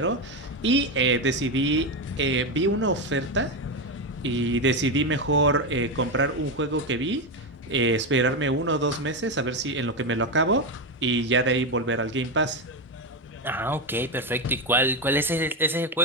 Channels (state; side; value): normal; both; correlation 0.11